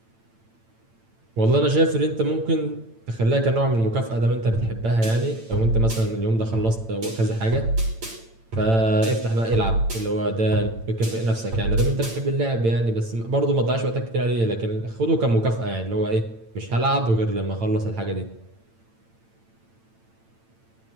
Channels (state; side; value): late; left; 8.9 ms